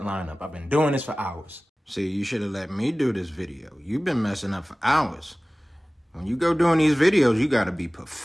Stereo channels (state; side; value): normal; both; correlation 0.98